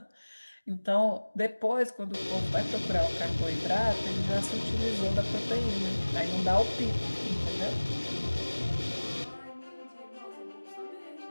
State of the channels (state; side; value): inverted; both; correlation -1.00